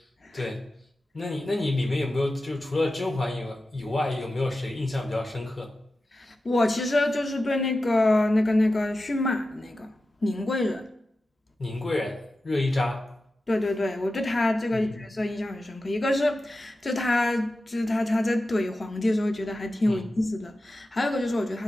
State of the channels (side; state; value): both; normal; correlation 0.93